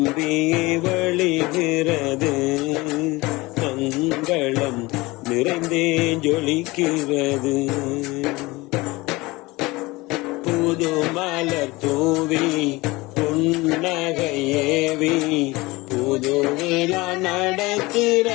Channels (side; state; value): right; quieter; 22.0 dB